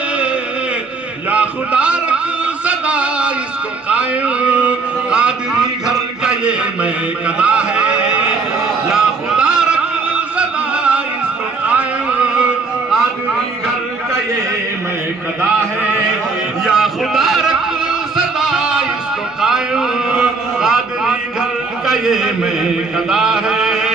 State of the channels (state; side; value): quieter; left; 4.3 dB